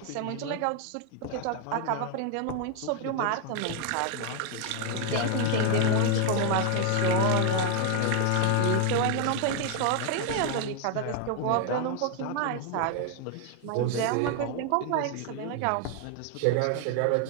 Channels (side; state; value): both; different; correlation 0.01